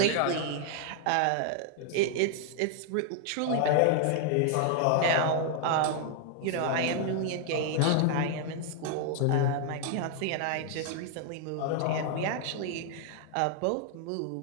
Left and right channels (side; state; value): both; different; correlation 0.00